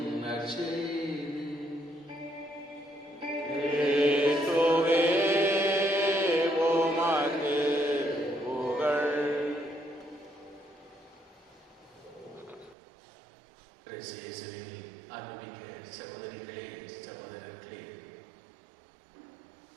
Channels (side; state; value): left; drops out; at 12.8 s